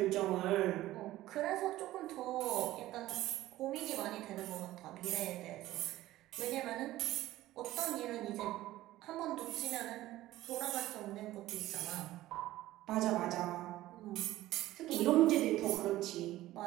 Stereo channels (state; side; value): quieter; left; 15.7 dB